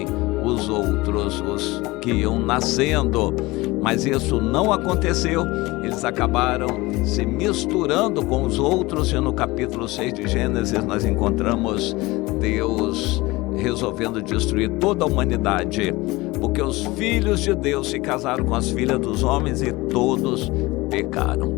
os outros, os que iam nascendo, mas isso não aconteceu. Eles acabaram se misturando com os outros, e no capítulo 6 de Gênesis nós encontramos Deus resolvendo destruir toda a humanidade, porque os filhos de Deus se casaram com as filhas dos homens e todos pecaram.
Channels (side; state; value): right; quieter; 21.3 dB